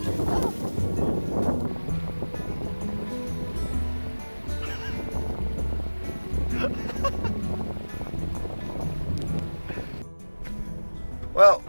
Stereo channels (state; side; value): inverted; both; correlation -1.00